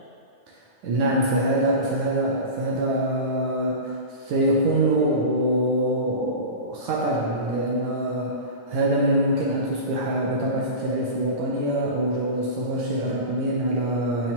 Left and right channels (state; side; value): late; left; 9.2 ms